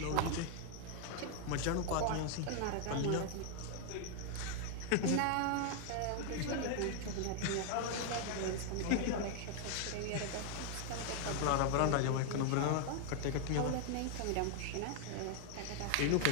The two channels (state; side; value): different; both; correlation 0.00